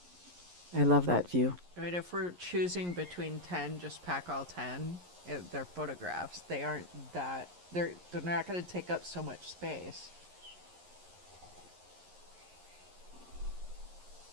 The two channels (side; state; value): left; late; 11 ms